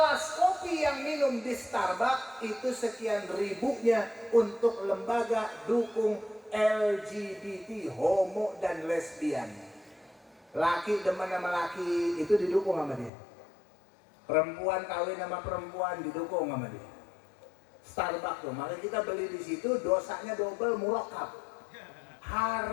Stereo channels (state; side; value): drops out; right; at 13.1 s